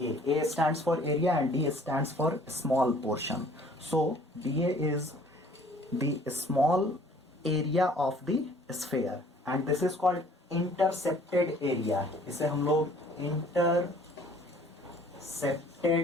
A stands for area and D stands for small portion. So dA is the small area of the sphere and this is called intercepted area. इसे हम लोग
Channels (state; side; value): normal; both; correlation 0.55